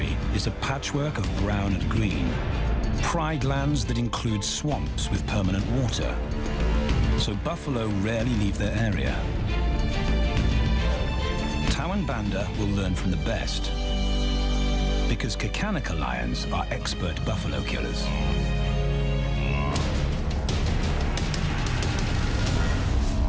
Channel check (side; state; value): both; identical; correlation 1.00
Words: is a patchwork of brown and green. Pride lands that include swamps with permanent water. So buffalo rarely leave their area. Tawan Banda will learn from the best, because Kakanika lions are expert buffalo killers.